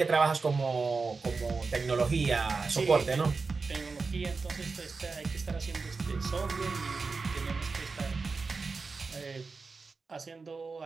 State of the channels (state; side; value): quieter; left; 4.4 dB